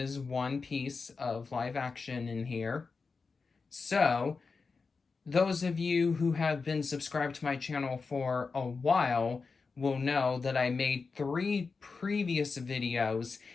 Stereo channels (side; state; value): right; quieter; 4.6 dB